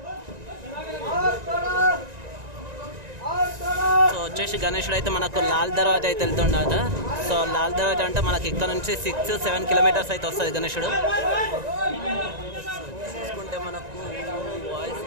సో వచ్చేసి గణేశుడు అయితే మనకు లాల్ దర్వాజా అయితే వెళ్తుండట. సో లాల్ దర్వాజా అంటే మనకి ఇక్కడ నుంచి 6-7 కిలోమీటర్స్ అయితే వస్తుంది గణేశుడు. చూసుకుంటే మనకు వాయిస్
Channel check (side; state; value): left; late; 1.9 ms